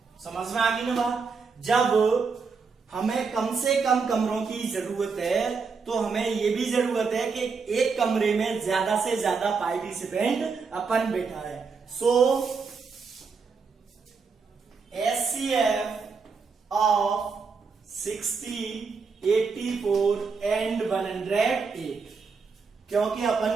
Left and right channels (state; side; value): quieter; left; 5.0 dB